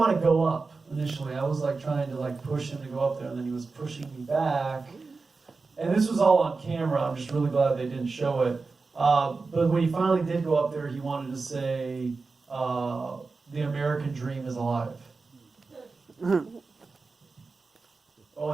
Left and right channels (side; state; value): left; quieter; 4.1 dB